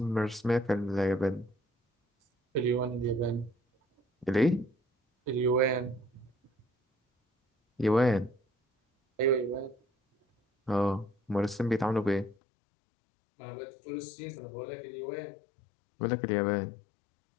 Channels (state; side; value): drops out; right; at 12.4 s